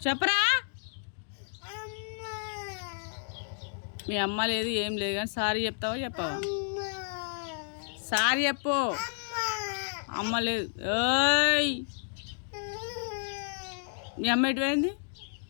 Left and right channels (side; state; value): right; silent; digital silence